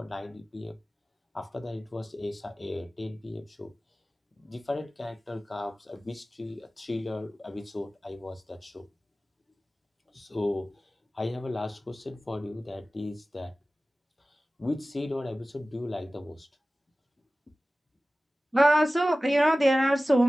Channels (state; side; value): normal; both; correlation 0.97